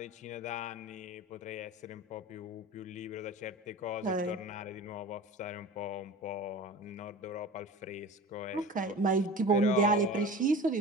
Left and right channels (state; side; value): normal; both; correlation 0.35